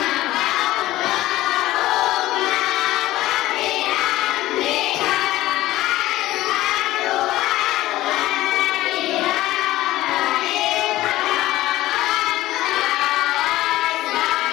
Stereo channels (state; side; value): quieter; right; 16.1 dB